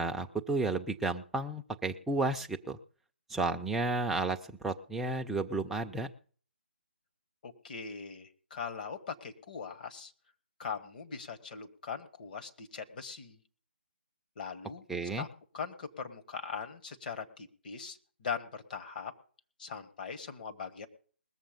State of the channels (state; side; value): normal; both; correlation 0.31